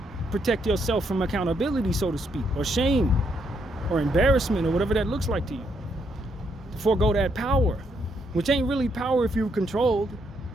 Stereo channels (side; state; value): both; normal; correlation 0.75